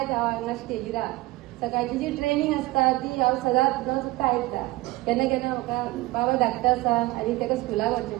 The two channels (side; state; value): left; quieter; 19.8 dB